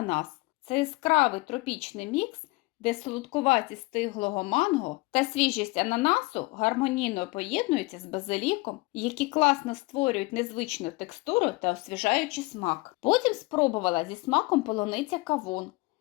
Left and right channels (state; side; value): quieter; right; 23.4 dB